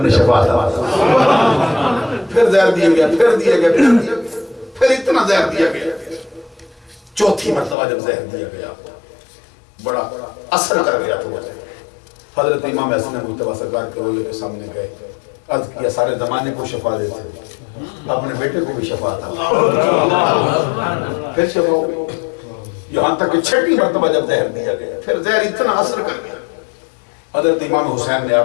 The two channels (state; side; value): drops out; right; at 7.8 s